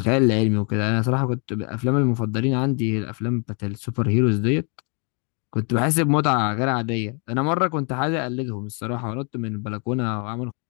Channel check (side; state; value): right; quieter; 36.2 dB